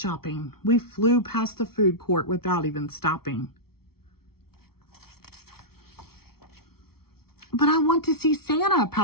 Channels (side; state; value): right; late; 0.95 ms